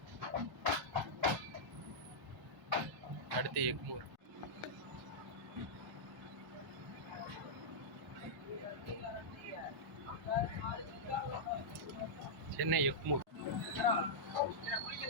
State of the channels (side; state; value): both; normal; correlation -0.10